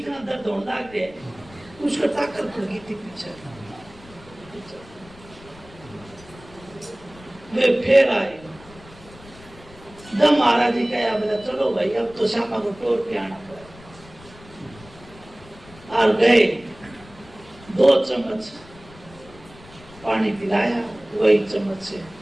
दर्द होने लग गया, उसका ताकत पड़ गई थी पीछे। वे फिर आए, जब महाराज जी कहा बोला चलो भाई अब तो श्यामा को तोड़ के आना पड़ा। और गए, 2 चम्मच पानी पिलाया, वही चम्मच से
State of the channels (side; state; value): left; noise; rumble, 22 dB below the sound